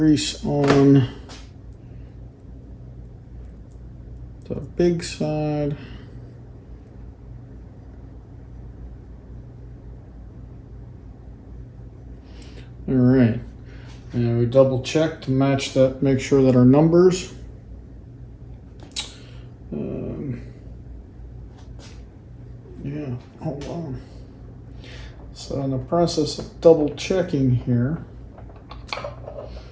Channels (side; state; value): both; identical; correlation 1.00